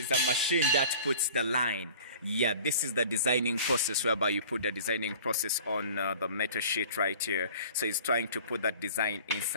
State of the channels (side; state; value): both; inverted; correlation -0.46